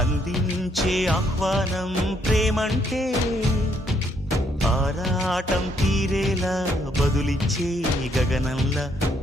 అందించే ఆహ్వానం ప్రేమంటే ఆరాటం తీరేలా బదులిచ్చే గగనంలా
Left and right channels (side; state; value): both; normal; correlation 0.71